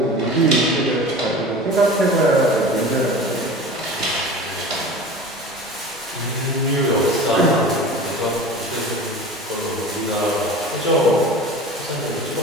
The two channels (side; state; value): both; normal; correlation 0.36